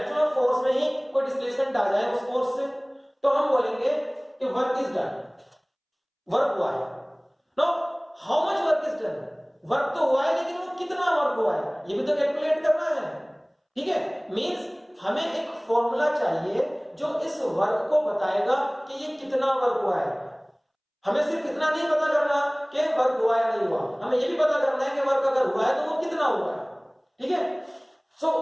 of force में ही कोई displacement आ जाए उस force से, तो हम बोलेंगे कि वर्क इज डन, वर्क हुआ है. No, how much work is done? Work तो हुआ है, लेकिन वो कितना वर्क हुआ है ये भी तो कैलकुलेट करना है, ठीक है. मींस हमें एक फॉर्मूला चाहिए जो इस वर्क को बताएगा कि ये कितना वर्क हुआ है. हमें सिर्फ इतना नहीं पता करना कि वर्क हुआ या नहीं हुआ, हमें ये भी पता करना है कि वर्क अगर हुआ है तो वो कितना हुआ है, ठीक है. So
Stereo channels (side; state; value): both; identical; correlation 1.00